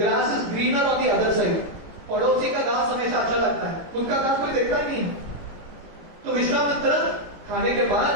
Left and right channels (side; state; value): left; late; 18 ms